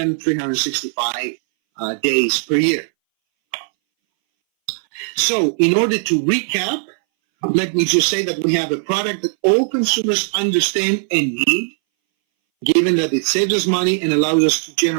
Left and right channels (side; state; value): left; silent; 63 dB below the other